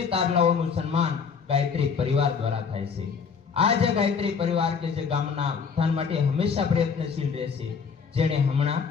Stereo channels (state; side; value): quieter; right; 6.0 dB